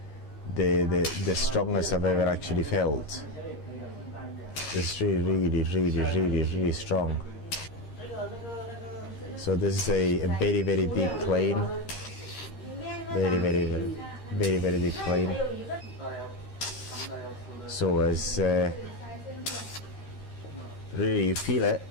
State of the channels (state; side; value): late; right; 13 ms